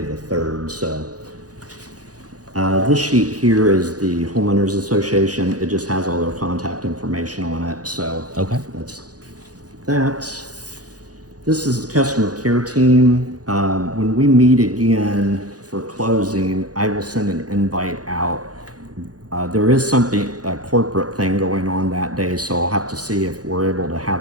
3rd. So this sheet here is the Homeowners Association. It just has all their contact information on it. So that's that. This is the customer care team. When we meet again for closing, I will send an invite out. There is a corporate thing going on that day, so I'll have to see if we're able to have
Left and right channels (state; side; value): late; left; 0.68 ms